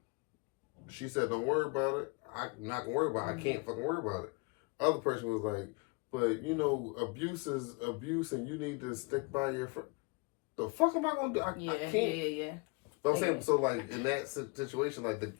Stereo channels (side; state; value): right; quieter; 29.4 dB